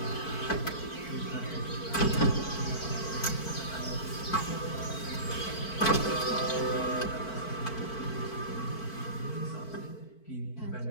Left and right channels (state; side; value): late; right; 4.5 ms